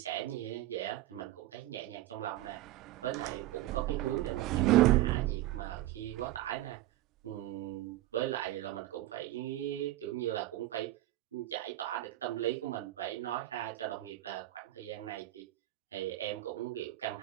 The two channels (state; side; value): quieter; left; 15.1 dB